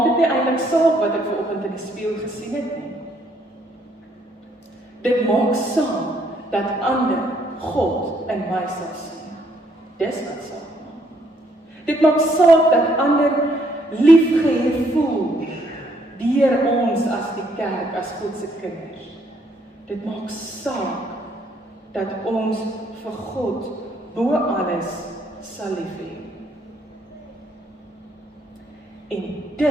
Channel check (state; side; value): normal; both; correlation 0.69